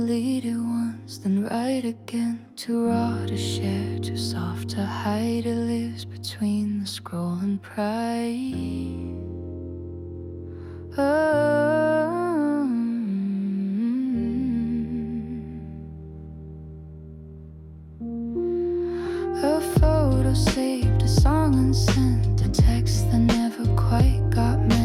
it once, then write again. Too raw to share, too soft to hide. It lives between the scroll and pride. A photo saved, a song unsent, a text that never quite got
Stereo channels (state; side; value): identical; both; correlation 1.00